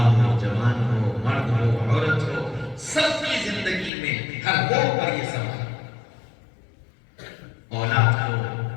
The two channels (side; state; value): right; drops out; at 3.9 s